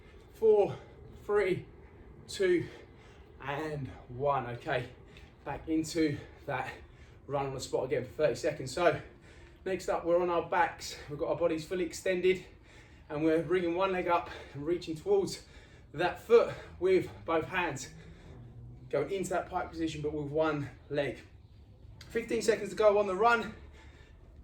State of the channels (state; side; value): identical; both; correlation 1.00